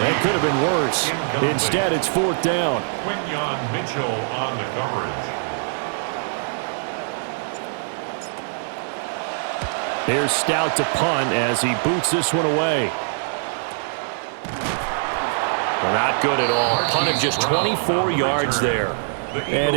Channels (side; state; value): left; silent; digital silence